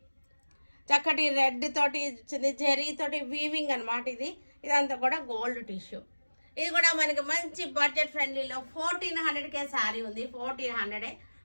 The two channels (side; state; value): both; inverted; correlation -1.00